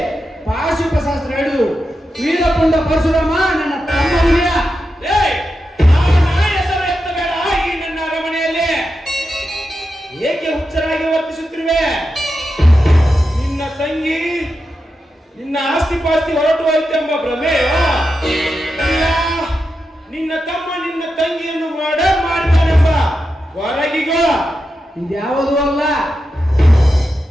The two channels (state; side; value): normal; both; correlation 0.88